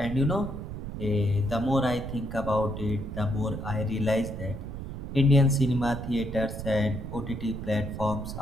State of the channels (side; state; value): right; noise; rumble, 7 dB below the sound